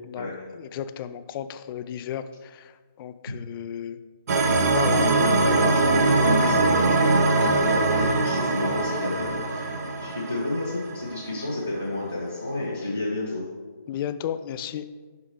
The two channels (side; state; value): both; inverted; correlation -0.58